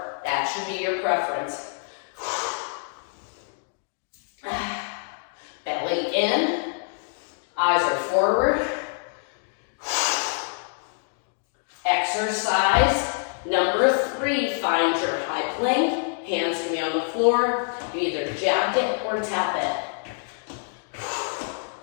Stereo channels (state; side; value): silent; right; 61 dB below the other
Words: That should be your preference. Belly in, eyes are forward. Exercise number 3, find your high plank. Hands can be on the floor. You either jab it or tap it.